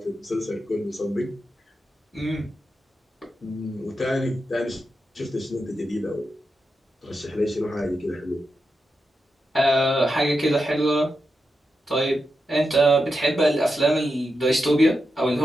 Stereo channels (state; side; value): normal; both; correlation 0.88